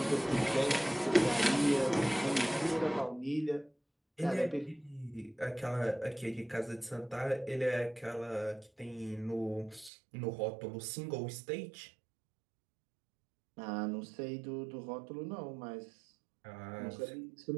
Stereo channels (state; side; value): drops out; left; at 9.9 s